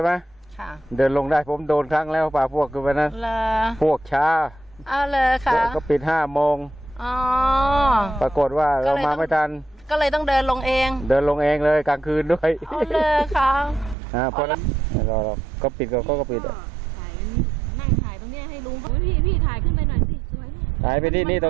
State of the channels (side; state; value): left; drops out; at 14.0 s